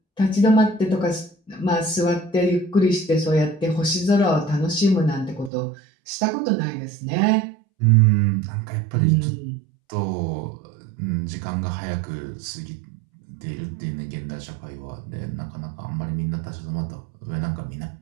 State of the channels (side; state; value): left; drops out; at 5.5 s